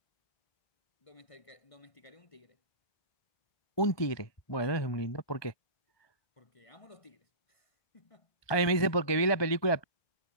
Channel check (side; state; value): right; late; 1.2 ms